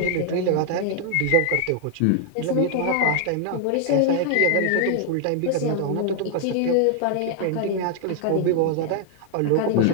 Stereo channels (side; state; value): both; different; correlation 0.00